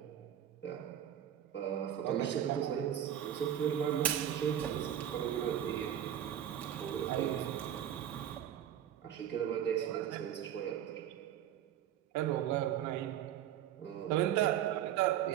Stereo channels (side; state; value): left; quieter; 10.6 dB